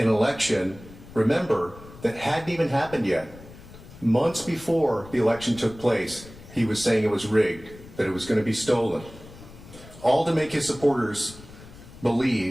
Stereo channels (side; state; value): left; noise; rumble, 19 dB below the sound